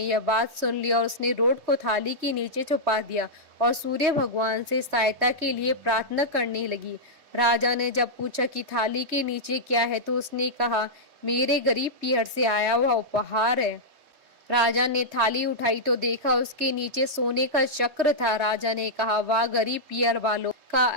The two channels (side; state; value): left; late; 3.2 ms